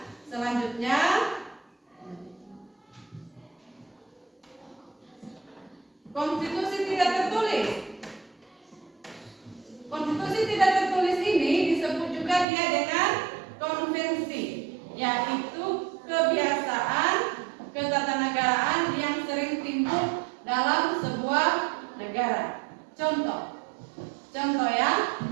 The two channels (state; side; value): drops out; left; at 12.5 s